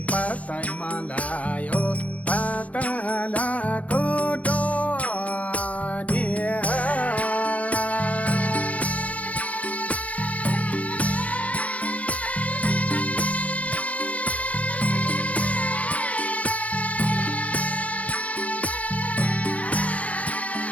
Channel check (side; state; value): right; late; 0.066 ms